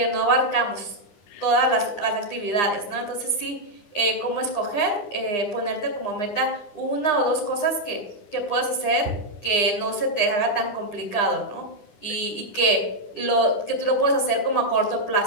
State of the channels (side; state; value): right; late; 9.8 ms